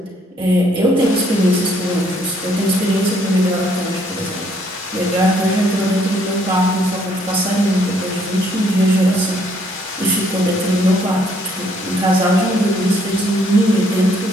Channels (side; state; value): both; normal; correlation 0.67